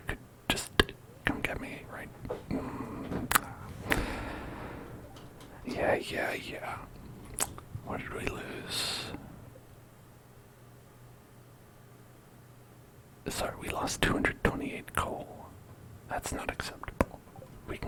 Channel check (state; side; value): identical; both; correlation 1.00